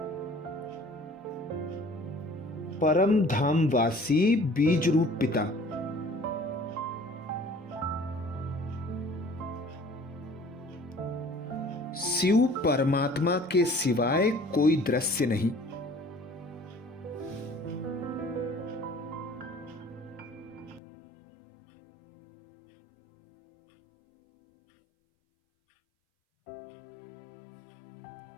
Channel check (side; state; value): right; drops out; at 20.8 s